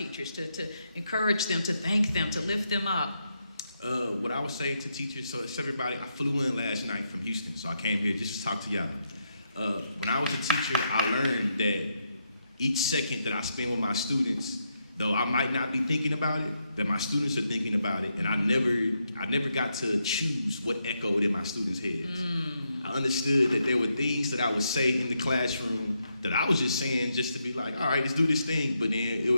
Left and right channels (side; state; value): both; inverted; correlation -0.81